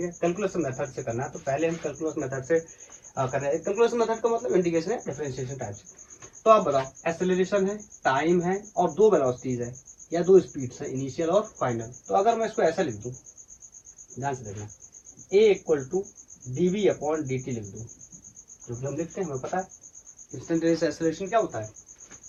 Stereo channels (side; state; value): both; identical; correlation 1.00